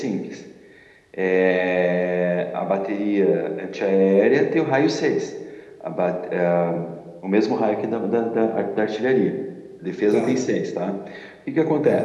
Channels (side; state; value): both; identical; correlation 1.00